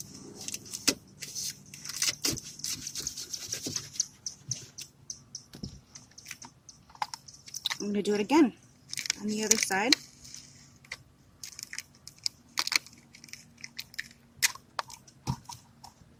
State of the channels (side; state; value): both; identical; correlation 1.00